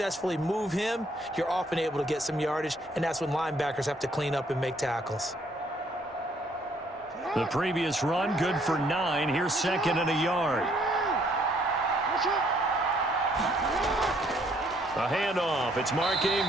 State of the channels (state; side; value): normal; both; correlation 0.66